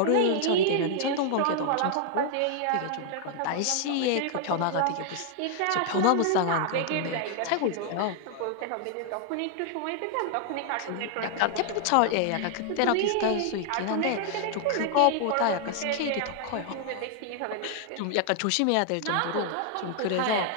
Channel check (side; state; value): both; different; correlation 0.00